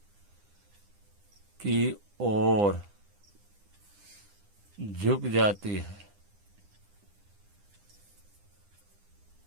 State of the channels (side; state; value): left; late; 9.9 ms